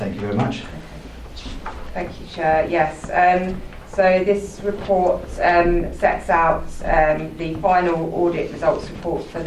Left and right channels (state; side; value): identical; both; correlation 1.00